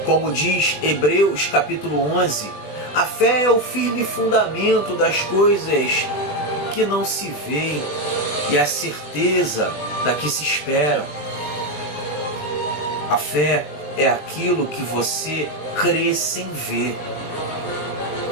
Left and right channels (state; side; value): late; right; 20 ms